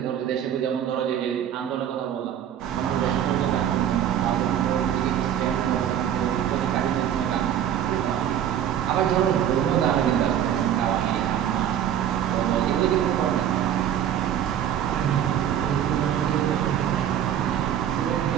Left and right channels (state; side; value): quieter; left; 10.1 dB